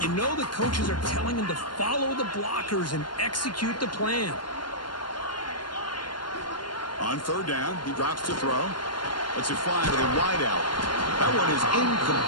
you know the coaches are telling him to follow the blockers and execute the plan. On third down, he drops to throw. Lets it fly to the wideout. That one is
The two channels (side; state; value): right; late; 0.71 ms